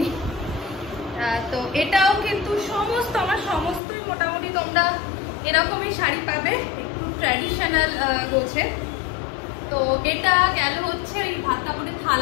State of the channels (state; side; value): drops out; right; at 3.8 s